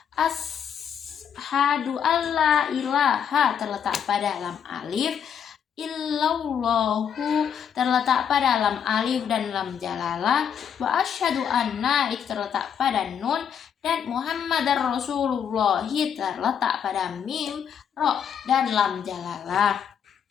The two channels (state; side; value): quieter; right; 8.0 dB